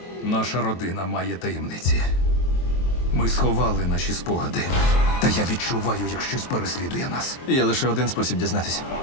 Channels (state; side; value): late; right; 23 ms